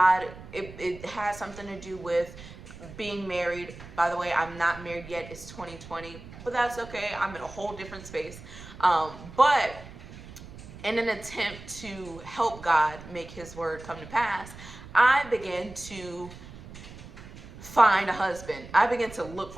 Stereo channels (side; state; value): right; noise; rumble, 16 dB below the sound